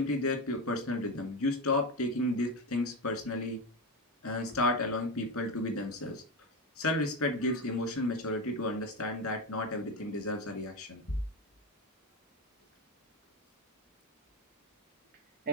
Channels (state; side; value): normal; both; correlation 0.17